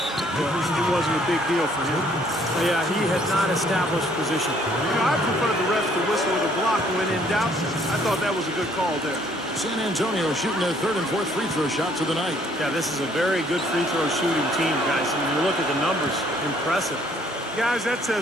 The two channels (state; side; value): normal; both; correlation 0.63